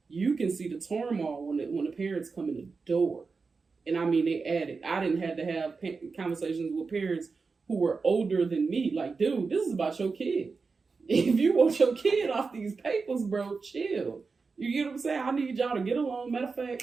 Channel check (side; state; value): left; quieter; 4.6 dB